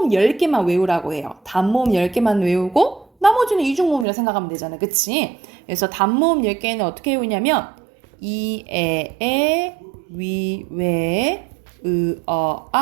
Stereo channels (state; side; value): drops out; left; at 4.0 s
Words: 10개만 외우라고 해요. 단모음 10개만 외우고 나머지는 이중모음이라 생각하면 되잖아. 그치? 그래서 단모음 10개는 어떻게 외우냐면 이, 에, 위, 웨,